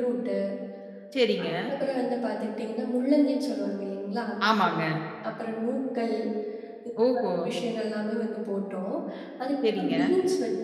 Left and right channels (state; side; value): identical; both; correlation 1.00